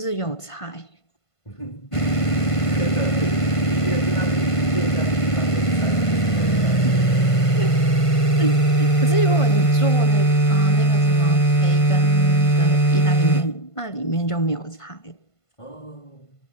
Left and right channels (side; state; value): right; late; 1.5 ms